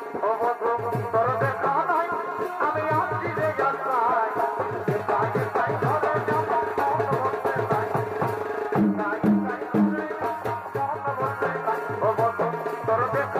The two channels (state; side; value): identical; both; correlation 1.00